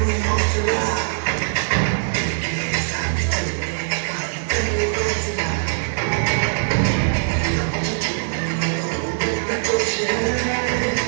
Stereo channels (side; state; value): left; silent; digital silence